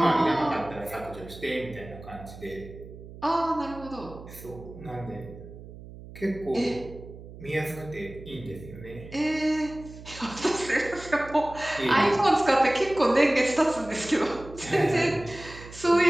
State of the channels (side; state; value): right; noise; hum, 16 dB below the sound